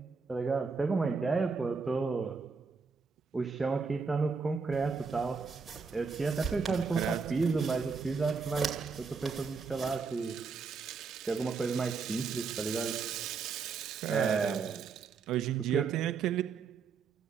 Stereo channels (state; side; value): quieter; left; 5.1 dB